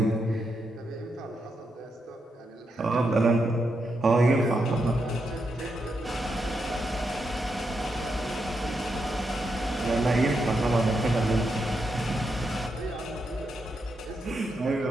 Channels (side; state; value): both; normal; correlation 0.83